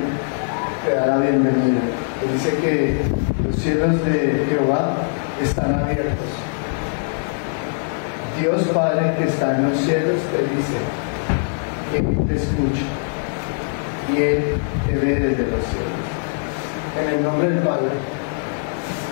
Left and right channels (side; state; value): right; silent; 65 dB below the other